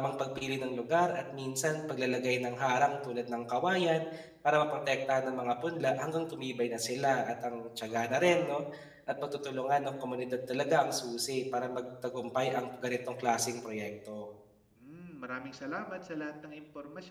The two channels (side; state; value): both; identical; correlation 1.00